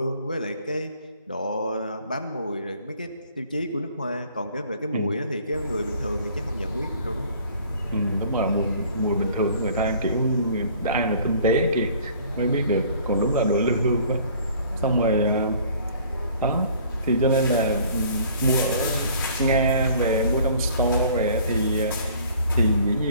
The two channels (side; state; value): both; inverted; correlation -0.54